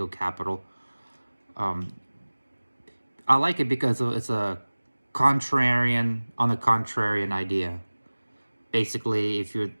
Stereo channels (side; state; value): both; inverted; correlation -1.00